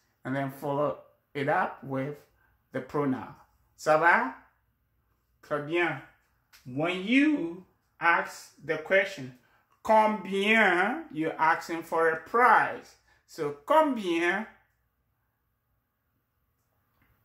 and then follow it up with the pronoun. Ça va? Très bien. When you ask the question, combien, you're asking for a price. So combien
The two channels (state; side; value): identical; both; correlation 1.00